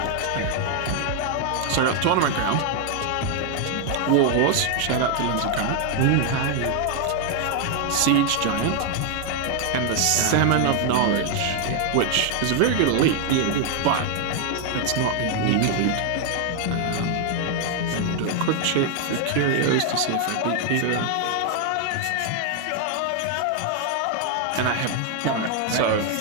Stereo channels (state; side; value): different; both; correlation 0.00